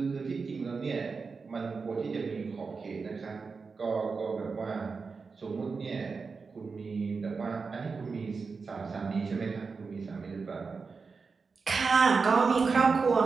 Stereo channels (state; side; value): quieter; left; 4.8 dB